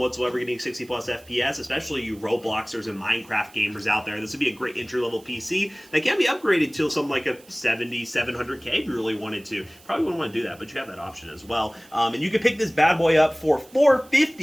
getting 60 plus FPS, especially you Robloxers and Minecraft gamers out there. This would be a great entry-level PC that can be upgraded to something like a 700K if you really wanted to. Probably wouldn't want to do that, but you have that option as well. And you can pick this bad boy up for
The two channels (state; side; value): noise; right; hiss, 25 dB below the sound